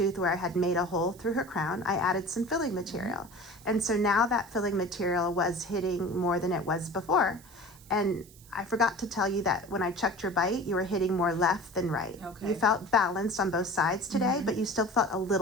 where I had made a hole through her crown, I added some filling material. And so now that filling material was hitting more than it was before. And I forgot to tell you that when I checked your bite, you were hitting more left than right. Okay. You felt balanced on both sides today, but you still felt a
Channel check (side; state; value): right; noise; hiss, 23 dB below the sound